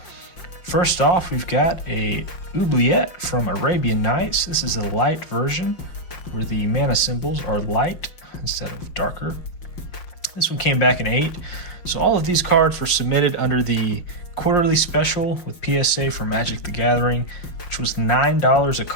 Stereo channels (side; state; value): right; late; 5.7 ms